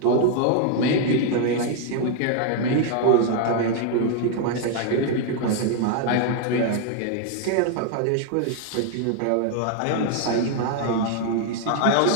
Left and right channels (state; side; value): different; both; correlation 0.00